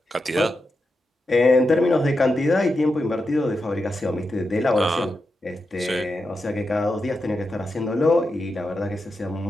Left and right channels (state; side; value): normal; both; correlation 0.88